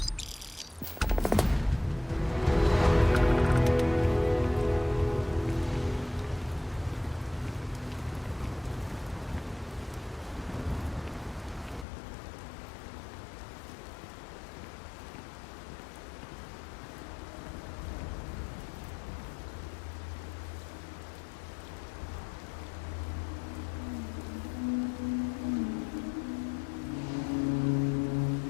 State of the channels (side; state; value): right; drops out; at 11.9 s